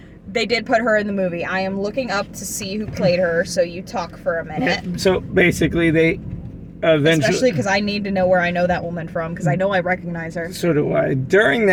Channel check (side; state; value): both; identical; correlation 1.00